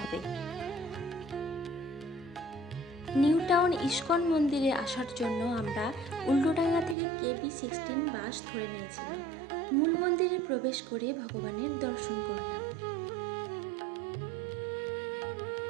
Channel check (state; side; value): drops out; left; at 7.0 s